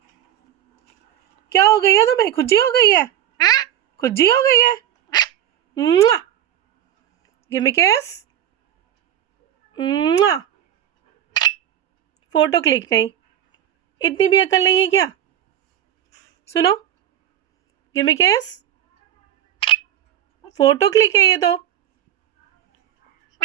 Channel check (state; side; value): quieter; left; 11.0 dB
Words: क्या हो गई है तुम्हें? खुजी हो गई है? खुजी हो गई है? गिव मी किस। फोटो क्लिक नहीं, इतनी भी अकल नहीं है क्या? सुनो, गिव मी किस। फोटो क्लिक है ये तो।